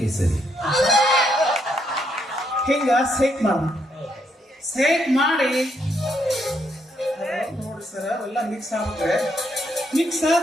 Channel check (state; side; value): normal; both; correlation 0.76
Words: ಹಿಂಗ ಸೇಕ್ ಮಾಡಿ ನೋಡಿ ಸರ್, ಎಲ್ಲ ಮಿಕ್ಸ್ ಆಗುತ್ತೆ. ಮಿಕ್ಸ್